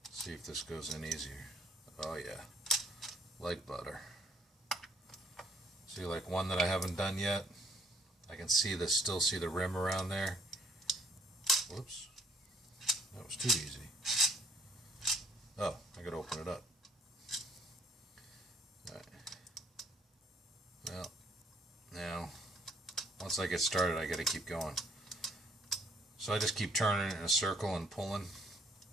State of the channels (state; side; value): normal; both; correlation 0.63